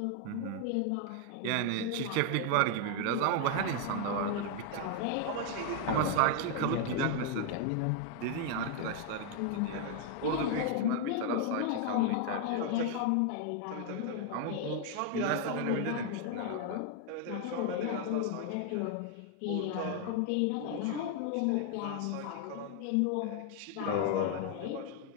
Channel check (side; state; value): both; different; correlation 0.00